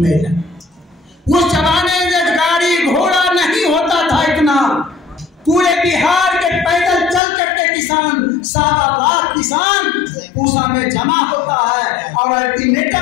उस जमाने में गाड़ी घोड़ा नहीं होता था इतना। पूरे बिहार के पैदल चल करके किसान, 7 लाख किसान पूसा में जमा होता है और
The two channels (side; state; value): right; drops out; at 7.2 s